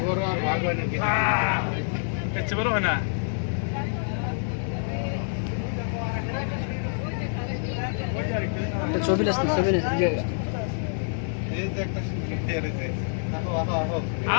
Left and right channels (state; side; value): silent; right; 60 dB below the other